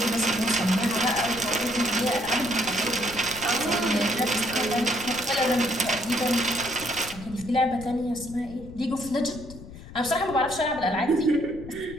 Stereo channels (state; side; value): noise; left; rumble, 16 dB below the sound